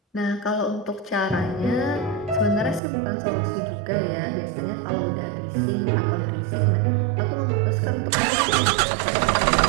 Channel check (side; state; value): left; drops out; at 2.8 s